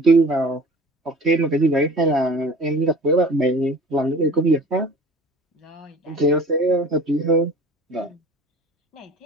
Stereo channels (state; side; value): normal; both; correlation 0.44